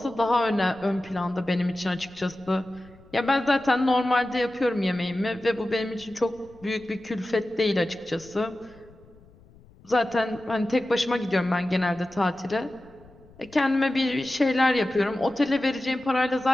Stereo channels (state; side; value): noise; left; rumble, 26 dB below the sound